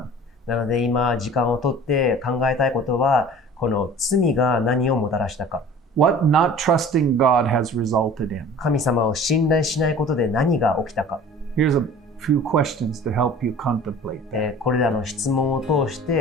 なので今時間をとって考えたいことは、この罪が何をもたらしたか。What not trusting God has resulted in. 神様を信頼しないことで何が起きたか。Here's a few questions to help you contemplate that. これらの質問を通し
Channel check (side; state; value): both; normal; correlation 0.44